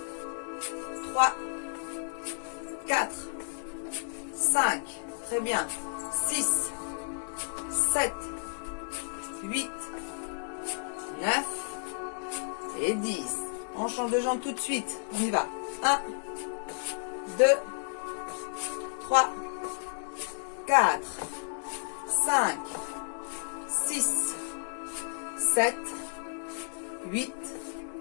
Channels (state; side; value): silent; right; digital silence